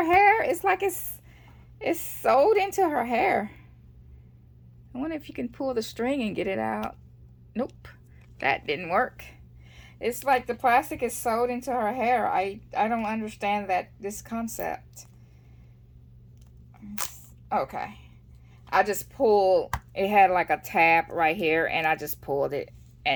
hair. It's like it's sewed into her hair. I wonder if you can pull the string and get it out. Nope, that didn't work. It's like the plastic is sewed into her hair. I don't understand this concept. Okay, I just pulled. It had like a tab right here, and I just pulled it,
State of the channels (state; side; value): identical; both; correlation 1.00